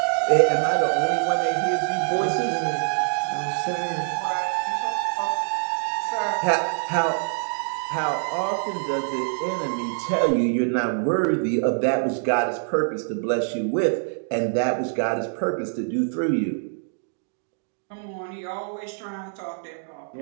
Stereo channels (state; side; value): silent; left; digital silence